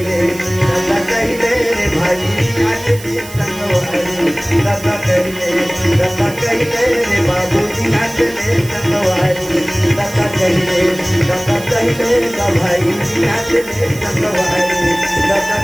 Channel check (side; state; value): right; noise; hiss, 16 dB below the sound